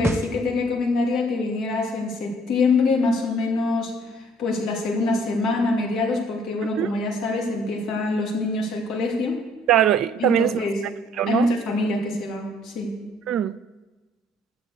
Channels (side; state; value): both; normal; correlation 0.59